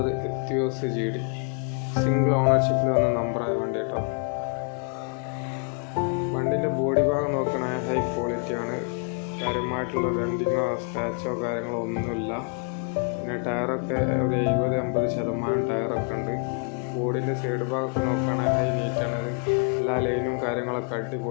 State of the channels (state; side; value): quieter; right; 39.3 dB